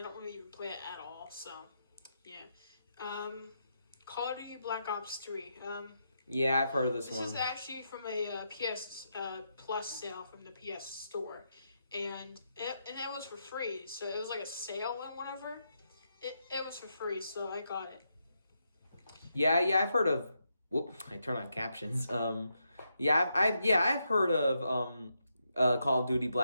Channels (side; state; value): both; inverted; correlation -0.82